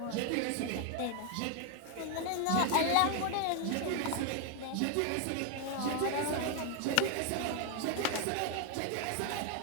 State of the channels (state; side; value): different; both; correlation 0.01